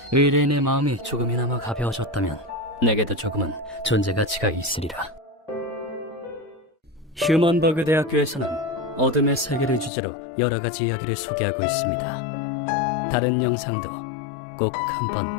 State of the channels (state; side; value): drops out; right; at 9.9 s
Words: 의뢰인의 마음이 조금이나마 가벼워졌다면 내게도 조금은 존재 가치가 있으리라. 휴먼버그 대학교에서는 어둠의 세계를 주제로 여러 가지 이야기를 소개하고 있습니다. 다른 영상도 꼭